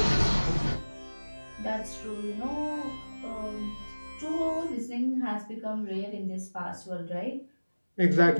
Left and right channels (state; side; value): inverted; both; correlation -1.00